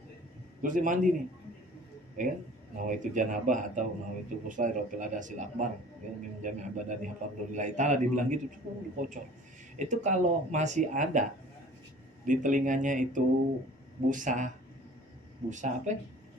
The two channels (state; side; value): normal; both; correlation 0.47